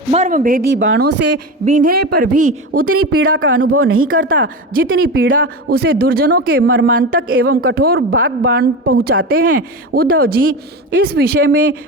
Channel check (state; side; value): normal; both; correlation 0.23